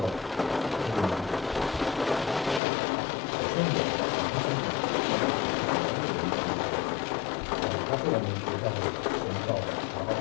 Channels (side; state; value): right; drops out; at 2.6 s